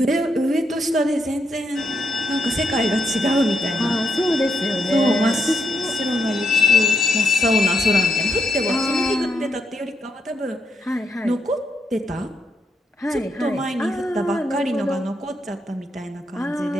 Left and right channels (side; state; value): both; normal; correlation 0.80